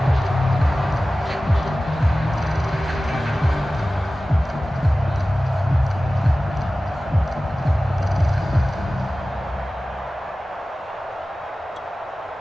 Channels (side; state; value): both; normal; correlation 0.96